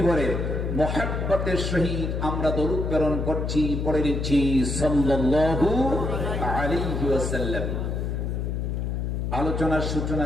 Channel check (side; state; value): left; noise; hum, 1 dB below the sound